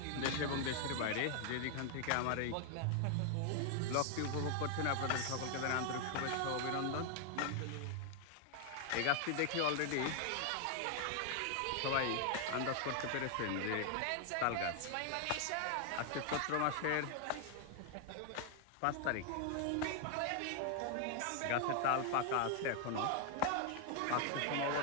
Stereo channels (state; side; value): different; both; correlation 0.00